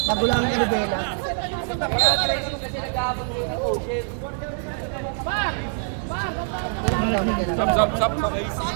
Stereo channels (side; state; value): left; silent; 62 dB below the other